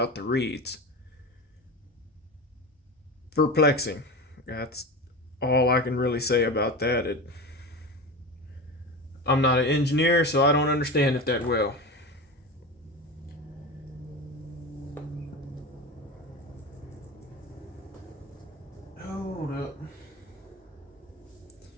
the reeds. Perplexing. That's all I can really say about that. I'm not an engineer, so I don't understand it that well. Hold up.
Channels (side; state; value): both; normal; correlation 0.26